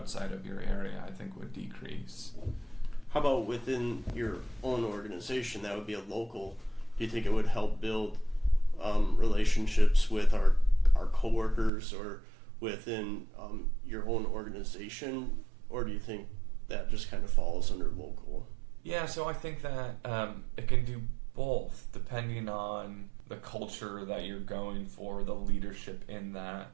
of your area, I think, would decrease. How about within your own organization? That would be a local. Do you think it would help build relationships with our coworkers or within your own organization, or do you think that just kind of falls under local? Yeah, so I think that it can do both, depending on the culture that you're going for, the leadership in that.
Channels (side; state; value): left; drops out; at 11.7 s